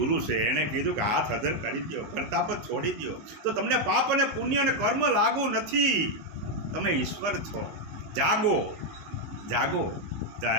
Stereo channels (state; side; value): late; left; 19 ms